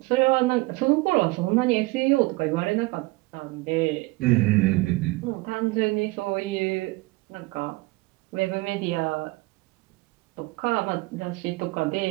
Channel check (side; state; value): left; quieter; 22.4 dB